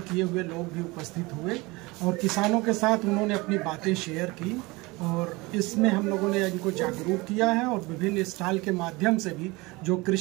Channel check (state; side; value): quieter; left; 23.5 dB